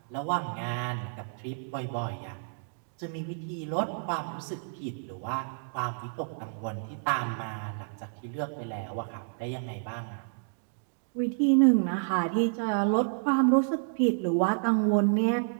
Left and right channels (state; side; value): silent; left; digital silence